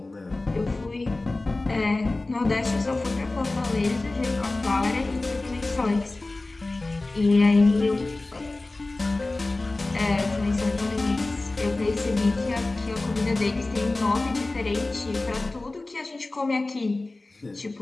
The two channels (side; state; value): right; quieter; 3.1 dB